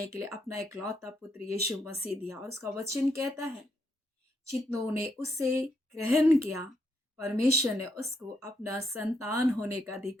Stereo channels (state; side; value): normal; both; correlation 0.77